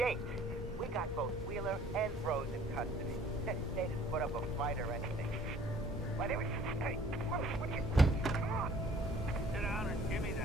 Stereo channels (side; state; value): both; normal; correlation 0.55